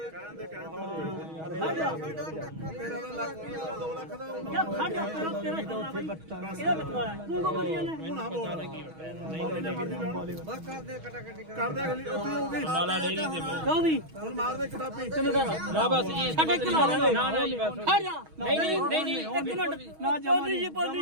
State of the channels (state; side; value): late; left; 6.3 ms